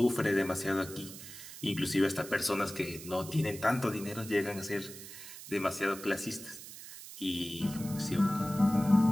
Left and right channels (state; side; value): noise; right; hiss, 13 dB below the sound